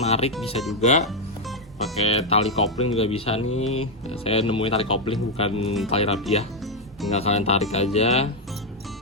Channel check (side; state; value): both; normal; correlation 0.02